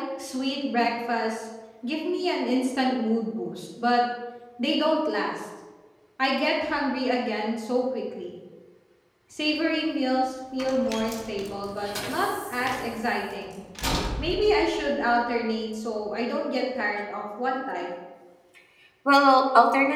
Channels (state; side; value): identical; both; correlation 1.00